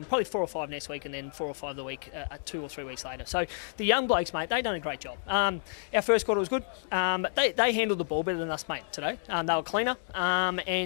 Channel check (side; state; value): right; silent; digital silence